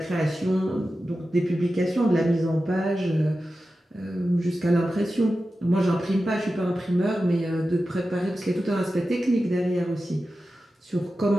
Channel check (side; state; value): both; normal; correlation 0.93